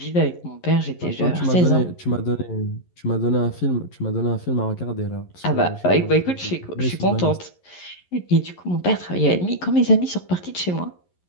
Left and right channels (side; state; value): right; late; 11 ms